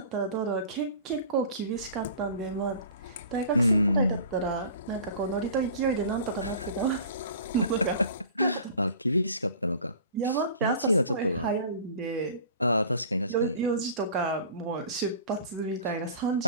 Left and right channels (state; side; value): inverted; both; correlation -0.42